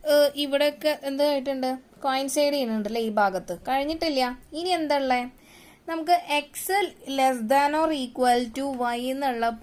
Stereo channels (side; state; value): both; identical; correlation 1.00